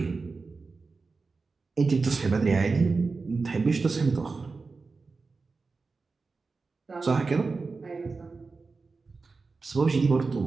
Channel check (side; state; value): left; quieter; 4.2 dB